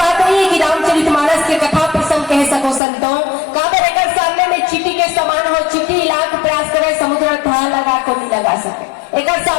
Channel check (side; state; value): right; drops out; at 2.8 s